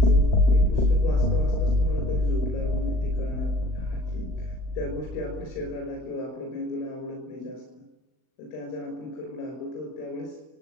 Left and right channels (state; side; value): late; right; 39 ms